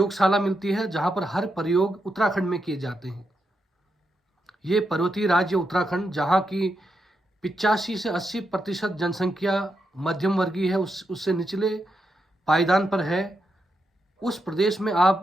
मिलती है जहां पर हर प्रयोग उत्तराखंड में किए जाते हैं। ये पर्वतीय राज्य उत्तराखंड, जहां की 85 से 80% जनसंख्या मध्यम वर्गीय है, उससे निचले पायदान पर है। उस प्रदेश में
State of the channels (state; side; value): normal; both; correlation 0.84